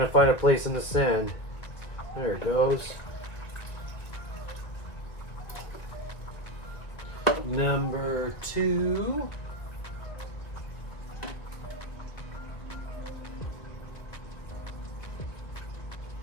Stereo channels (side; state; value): right; late; 2.2 ms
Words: find a place in the sand. There it goes. Number 2.